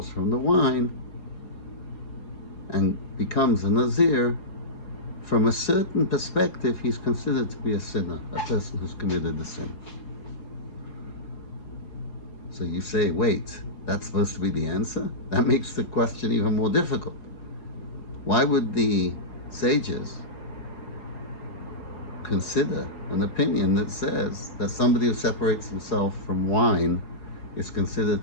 from the wine and becomes a Nazir, from a certain perspective, he's considered to be a sinner, a person who's committed a sin. So you say, wait, that's supposed to be the answer? That makes the question even more difficult. Why would the sages consider an opinion that says that somebody who separates himself from wine is considered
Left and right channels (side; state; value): right; late; 4.8 ms